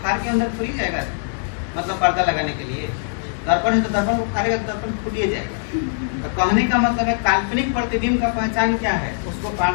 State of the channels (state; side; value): silent; right; digital silence